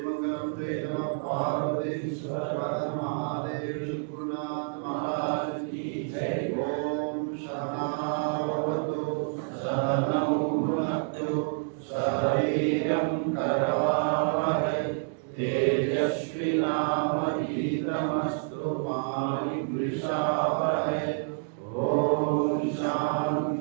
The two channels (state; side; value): silent; left; digital silence